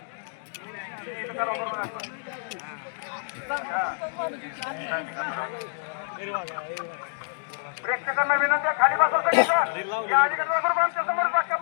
प्रेक्षकांना विनंती आहे खाली बसा सगळे या अलीकडे आमच्या समोर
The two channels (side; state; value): right; silent; digital silence